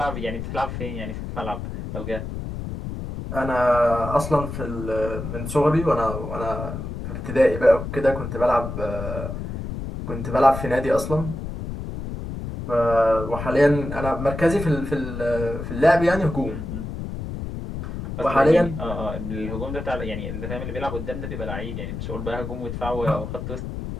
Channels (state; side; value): noise; left; rumble, 6 dB below the sound